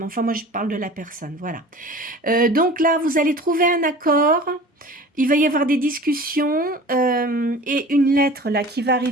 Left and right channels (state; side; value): normal; both; correlation 0.41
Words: enfin moi je parle de la personne, voilà. Donc là vous allez trouver un accord, il va y avoir des discussions et une lettre là qui va